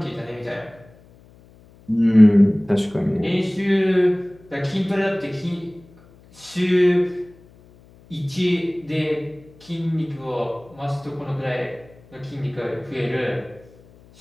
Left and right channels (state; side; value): noise; left; hum, 26 dB below the sound